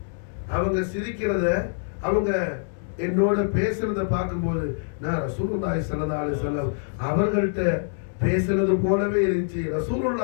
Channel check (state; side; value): silent; right; digital silence